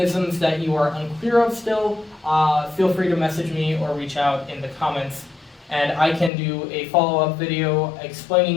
that you are unclear of still, feel free to message me or reach out in the comments, and I can do a follow-up video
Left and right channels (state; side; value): drops out; right; at 6.3 s